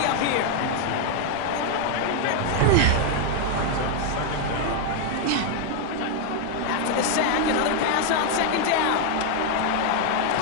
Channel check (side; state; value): both; different; correlation 0.00